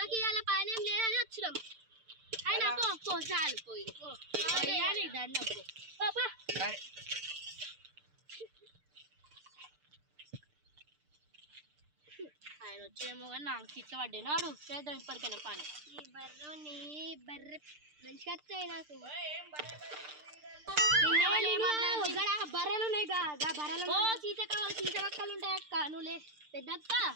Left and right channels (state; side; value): late; left; 6.7 ms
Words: ఇవాళ పైన ఏం లేదని వచ్చినాం. అయినా పో చాలు పోయి ఆయన వచ్చేమో కానీ నాకు తిట్ల పడ్డాడు. చేద్దాం ఇప్పటికైనా పని. బర్రె మంచిగా వస్తాయి నాకు. బర్రెలు ఉన్నాయి బర్రెలు చీచకక్కలు ఉంటాయి అక్క. నువ్వు పెద్ద అక్క